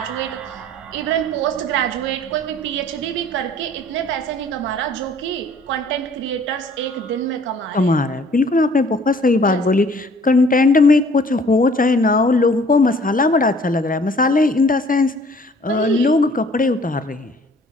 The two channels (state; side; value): normal; both; correlation 0.55